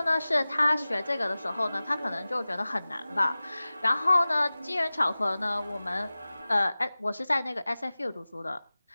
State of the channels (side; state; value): both; inverted; correlation -0.97